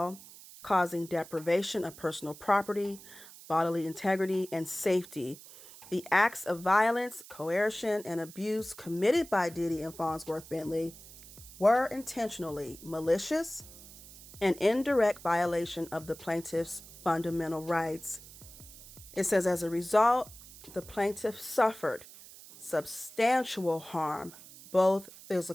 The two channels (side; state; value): right; noise; hiss, 18 dB below the sound